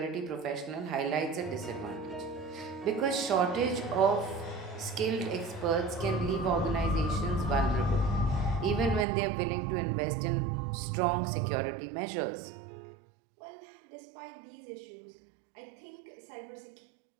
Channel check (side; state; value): left; drops out; at 9.1 s